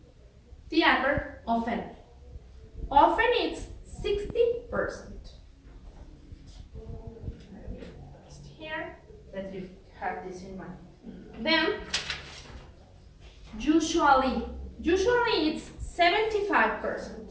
the adverb often. Often it's 60%. Here, that you have this in mind. Then usually it's 75%.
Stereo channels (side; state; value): both; identical; correlation 1.00